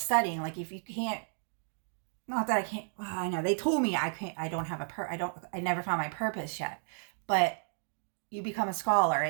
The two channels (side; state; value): left; silent; 56 dB below the other